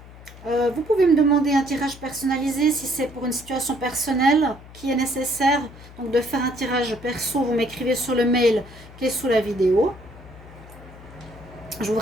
Vous pouvez me demander un tirage personnalisé si c'est pour une situation personnelle qui est nécessaire. Donc de faire un tirage perso, vous m'écrivez sur le mail qui est sous la vidéo. Je vous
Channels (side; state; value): left; noise; hum, 19 dB below the sound